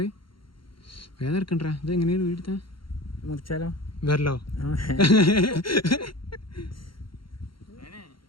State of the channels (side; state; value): right; late; 0.73 ms